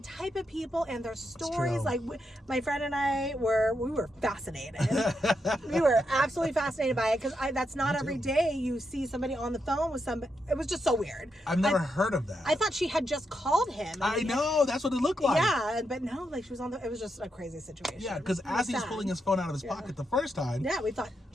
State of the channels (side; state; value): both; normal; correlation 0.83